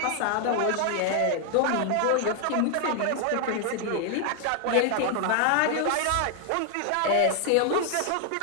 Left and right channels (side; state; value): both; different; correlation 0.00